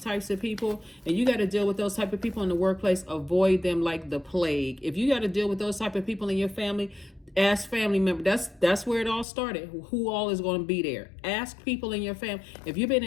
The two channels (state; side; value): drops out; right; at 9.2 s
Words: of people and you got to deal with those type of people in the workplace, avoid them like the plague. If you got to deal with those type of people in your family, ask family members. That's where it all started. Who all is going to be there? Ask people in your family. If you've been